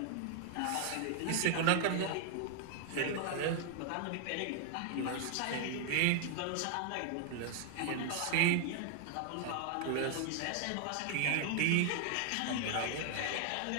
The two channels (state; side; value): different; both; correlation 0.00